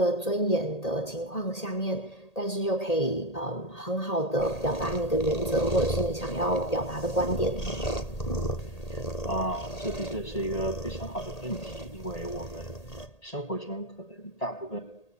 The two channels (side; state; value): right; late; 1.8 ms